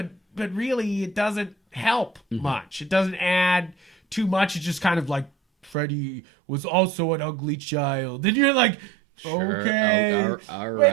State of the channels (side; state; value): left; drops out; at 5.8 s